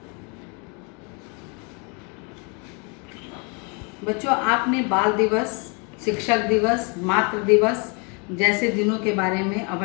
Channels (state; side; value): quieter; right; 33.9 dB